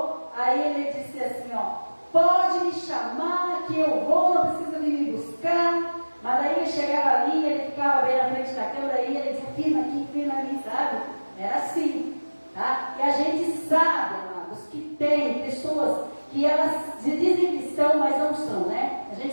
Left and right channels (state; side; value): inverted; both; correlation -1.00